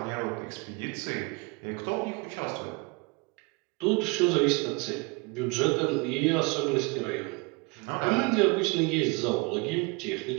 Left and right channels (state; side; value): quieter; left; 28.9 dB